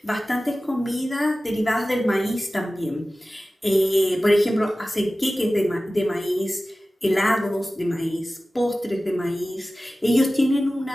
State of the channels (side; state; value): both; normal; correlation 0.96